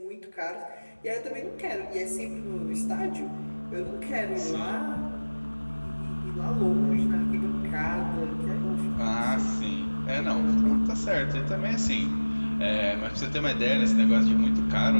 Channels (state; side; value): inverted; both; correlation -1.00